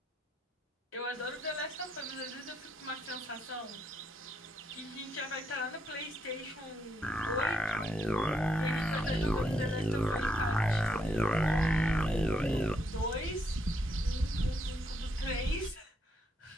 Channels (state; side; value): normal; both; correlation 0.76